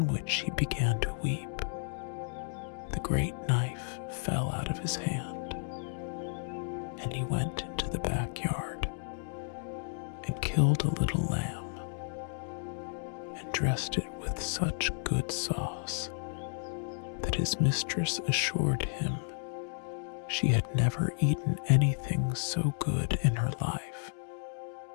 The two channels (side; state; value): right; silent; digital silence